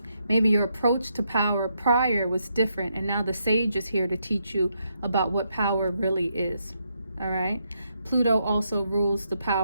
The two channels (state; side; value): inverted; both; correlation -0.79